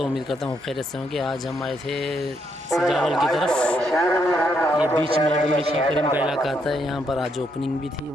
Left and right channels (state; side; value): noise; right; hum, 28 dB below the sound